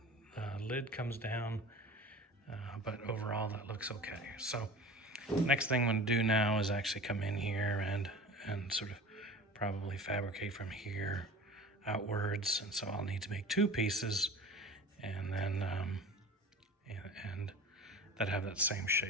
lid comes down. But overall, that looks okay. So next thing I'm gonna do now is actually come in here and sort of probably fabricate from here outwards. And so I'll need to make 2 pieces and then and that have that same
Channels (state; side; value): normal; both; correlation 0.37